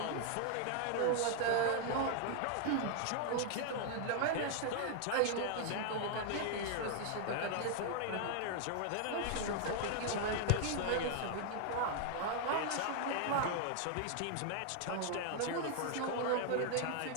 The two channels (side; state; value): both; different; correlation 0.00